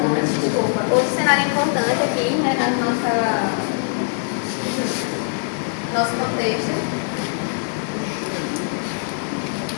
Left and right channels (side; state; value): right; silent; 62 dB below the other